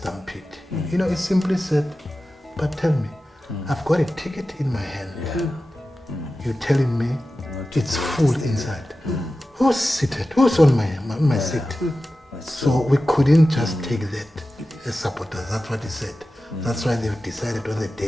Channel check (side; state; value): both; normal; correlation 0.94